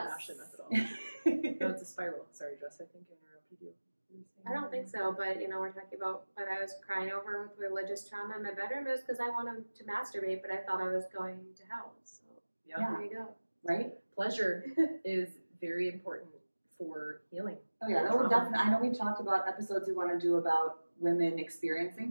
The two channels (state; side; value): inverted; both; correlation -1.00